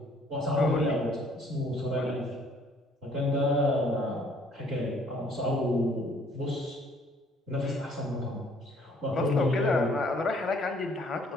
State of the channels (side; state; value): both; normal; correlation 0.61